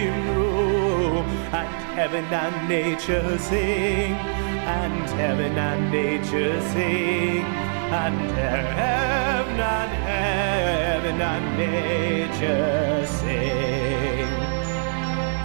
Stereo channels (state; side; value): silent; left; digital silence